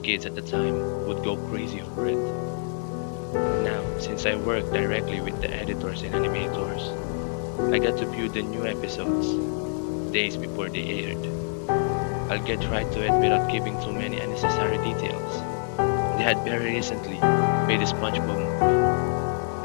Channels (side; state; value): right; silent; digital silence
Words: kids at the time would go crazy for it. Now, since I work directly with the editors and animators, I got to view the new episodes days before they aired. I'll get right to it without giving too many unnecessary details. They had very recently made a Spongebob